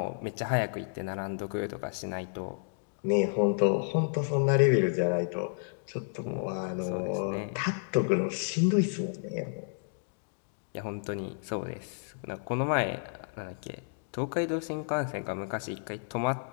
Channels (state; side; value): silent; right; digital silence